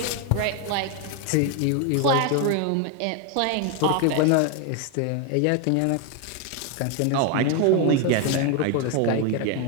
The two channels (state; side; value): different; both; correlation 0.01